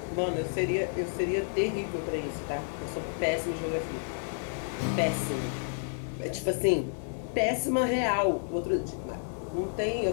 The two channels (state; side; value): silent; right; digital silence